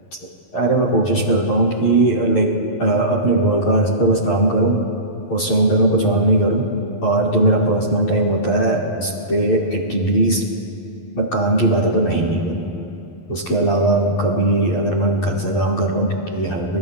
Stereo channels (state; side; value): late; right; 11 ms